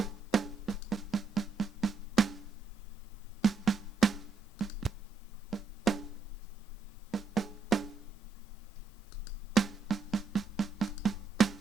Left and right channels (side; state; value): left; quieter; 5.0 dB